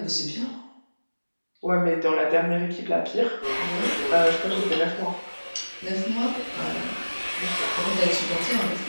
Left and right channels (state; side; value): inverted; both; correlation -1.00